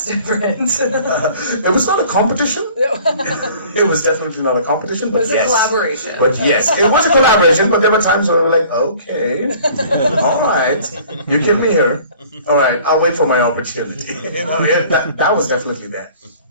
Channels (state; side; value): inverted; both; correlation -0.50